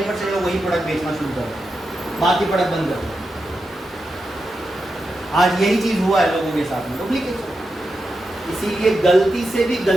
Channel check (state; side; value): normal; both; correlation 0.88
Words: लोग वही प्रोडक्ट बेचना शुरू कर रहे, बाकी प्रोडक्ट बंद कर दो। आज यही चीज हुआ है लोगों के साथ में, डुप्लीकेशन। इसीलिए गलती से भी